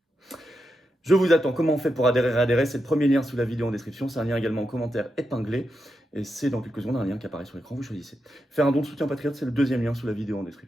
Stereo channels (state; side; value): normal; both; correlation 0.86